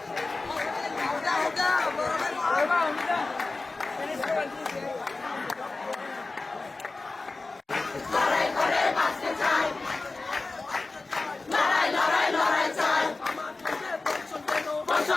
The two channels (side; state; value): right; quieter; 3.5 dB